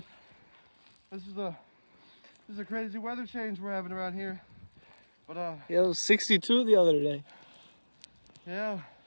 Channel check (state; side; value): inverted; both; correlation -1.00